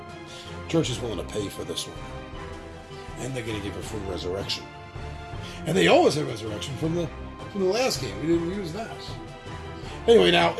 Church is willing to pay for this one. And they're going to give a free resurrection. And they always have resurrection from the last game. We didn't use that. Anyway, now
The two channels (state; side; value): identical; both; correlation 1.00